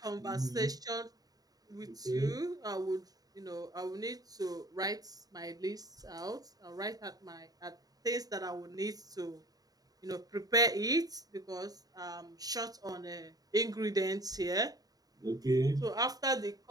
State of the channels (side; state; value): left; late; 0.18 ms